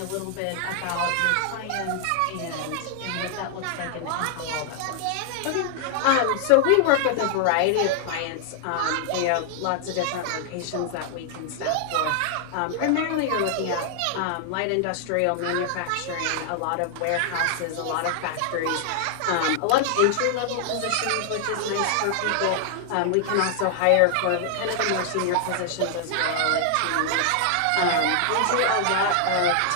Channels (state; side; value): different; both; correlation 0.00